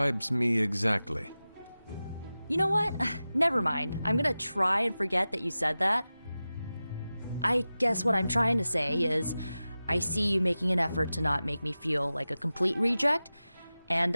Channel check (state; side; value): inverted; both; correlation -0.95